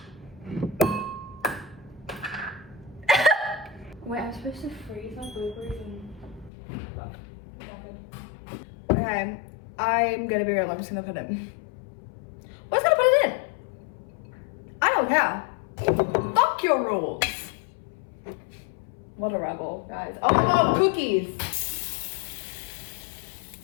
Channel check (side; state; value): right; drops out; at 6.5 s